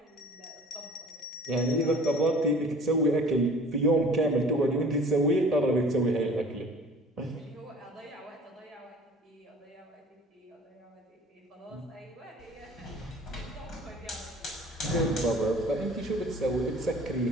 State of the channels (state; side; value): normal; both; correlation 0.47